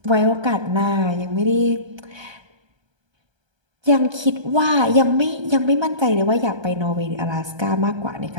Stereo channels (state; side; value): late; left; 1.3 ms